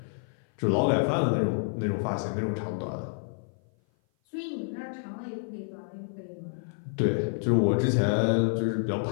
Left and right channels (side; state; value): right; silent; 55 dB below the other